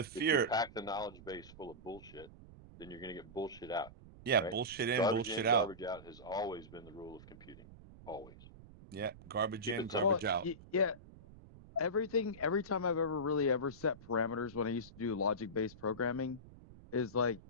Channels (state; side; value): noise; right; rumble, 19 dB below the sound